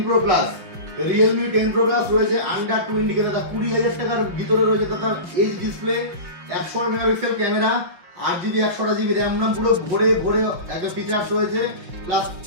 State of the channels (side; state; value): left; late; 5.6 ms